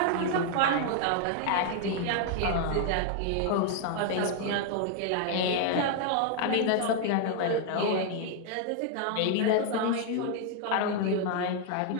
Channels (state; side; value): different; both; correlation 0.00